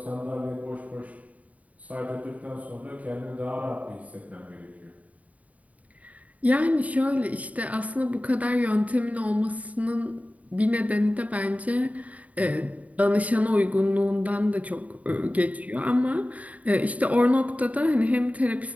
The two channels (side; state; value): left; late; 0.070 ms